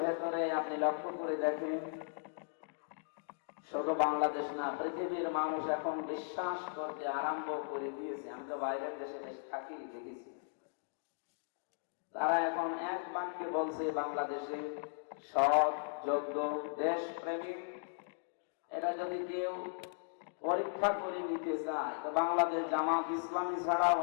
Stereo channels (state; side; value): silent; right; digital silence